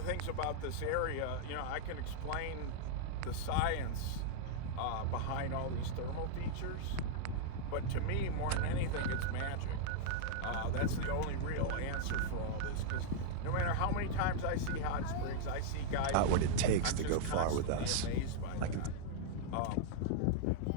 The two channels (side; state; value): both; different; correlation -0.01